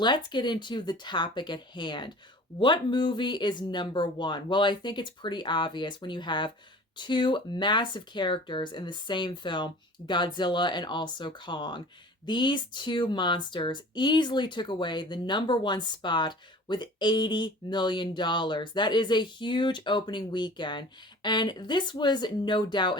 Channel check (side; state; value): both; normal; correlation 0.44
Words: get into the topic at hand. What movie is number one? Well, I think it's pretty obvious when you have two massive characters in the same film, Godzilla and also Kong. These two monsters easily took away the number one spot with $80 million. That is a huge opening weekend. And this was no doubt